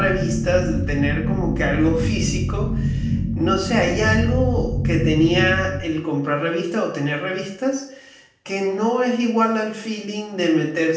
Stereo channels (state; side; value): identical; both; correlation 1.00